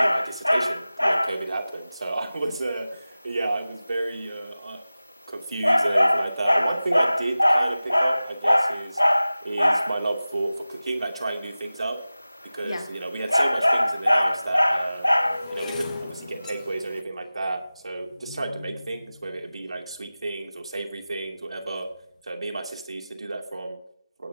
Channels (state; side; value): inverted; both; correlation -0.96